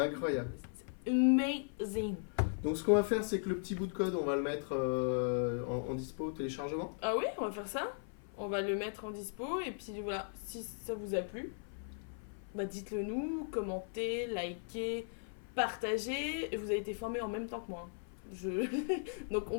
Amazing. Donc, ce qu'on va faire, c'est que le petit bout de code, on va le mettre en dispo au téléchargement. Ah oui, on va faire ça. On va le mettre en dispo. Et puis voilà, si ça vous a plu, bah dites-le nous, commentez, likez, partagez. Vous avez été formés en même temps que moi. Donc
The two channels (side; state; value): right; silent; 53 dB below the other